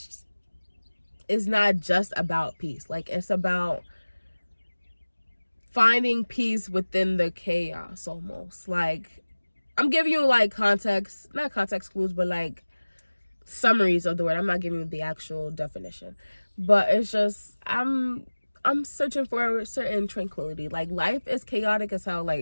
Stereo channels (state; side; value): inverted; both; correlation -1.00